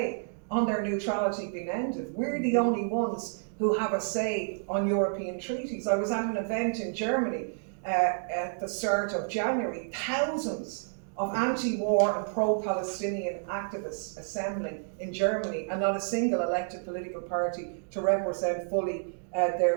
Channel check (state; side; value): silent; left; digital silence